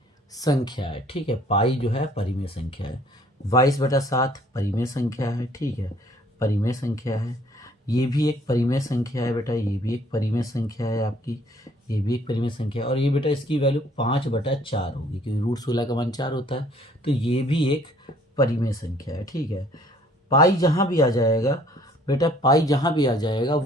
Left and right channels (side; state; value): both; normal; correlation 0.59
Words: संख्या है, ठीक है। पाई जो है परिमेय संख्या है। 22/7 परिमेय संख्या है, ठीक है, परिमेय संख्या है। ये भी एक परिमेय संख्या है बेटा, ये भी एक परिमेय संख्या है आपकी, ये भी एक परिमेय संख्या है। और ये बेटा इसकी वैल्यू 5/4 होगी, क्योंकि √16 का मान 4 होता है, तो ये भी एक परिमेय संख्या है, ठीक है। पाई जहाँ भी आ जाएगा बेटा, पाई जहाँ भी आ जाएगा